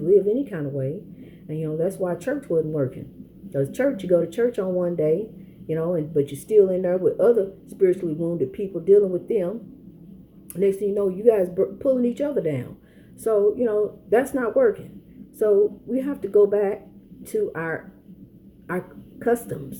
live any kind of way, and that's why church wasn't working. Because church, you go to church on one day, but you're still in there with other spiritually wounded people dealing with them. Next thing you know, you guys pulling each other down. So that's not working. So we have to go back to our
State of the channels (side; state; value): both; identical; correlation 1.00